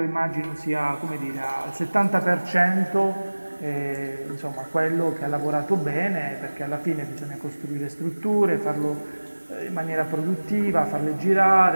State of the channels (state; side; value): inverted; both; correlation -1.00